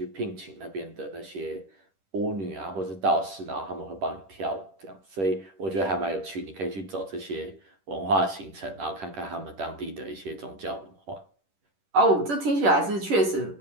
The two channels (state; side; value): late; left; 10 ms